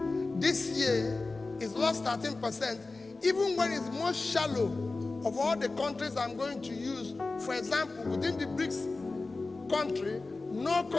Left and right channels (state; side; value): quieter; right; 3.5 dB